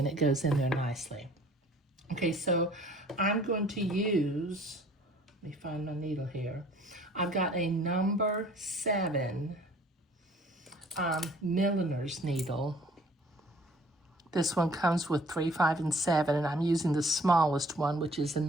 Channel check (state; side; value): normal; both; correlation 0.54